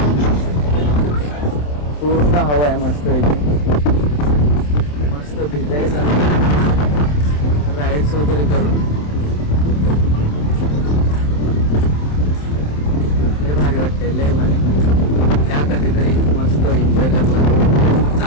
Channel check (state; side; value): late; right; 27 ms